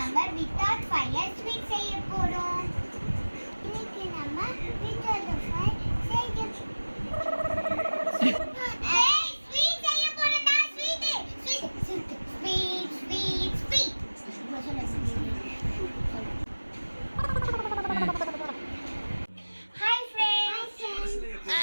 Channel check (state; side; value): inverted; both; correlation -1.00